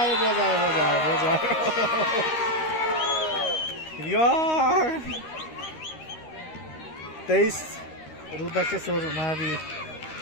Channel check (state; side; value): late; right; 13 ms